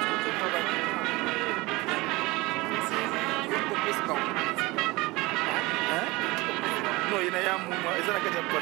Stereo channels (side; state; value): left; quieter; 22.3 dB